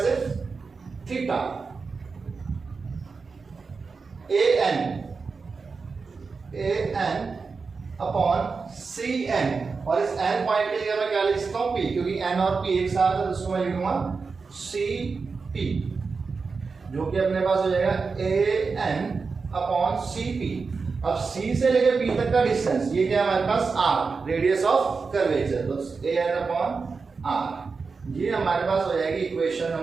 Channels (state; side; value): quieter; left; 4.7 dB